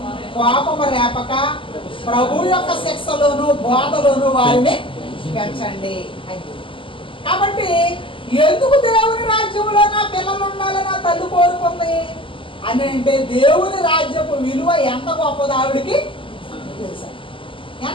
కోపము రేపక ప్రభు యొక్క శిక్షలోను బోధలోను వారిని పెంచండి. కాబట్టి ఎందుకు దేవుని రాజ్యంలో నా పిల్లలు ఉండాలని నా తల్లి కోరుకుంది అని అంటే, దేవుని రాజ్యపు విలువ ఎంత గొప్పది ఆవిడికి తెలుసా.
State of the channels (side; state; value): right; late; 0.25 ms